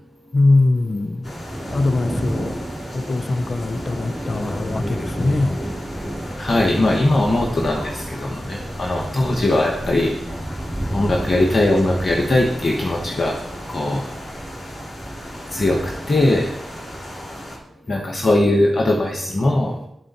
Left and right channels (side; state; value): both; normal; correlation 0.94